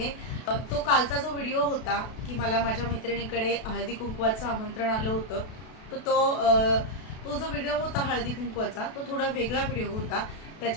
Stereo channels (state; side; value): late; right; 32 ms